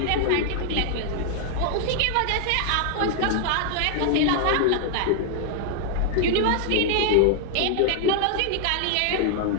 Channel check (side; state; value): both; different; correlation 0.00